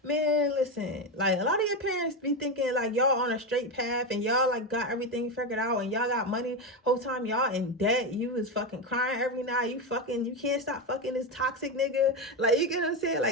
man, listen, like, a lot of your parents be thinking like y'all on a straight path and y'all like got everything figured out and y'all got money. Whole time y'all in debt. You is fucking crying every night. You can't stop fucking this toxic nigga. Like, you get what I'm saying?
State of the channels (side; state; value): both; normal; correlation 0.12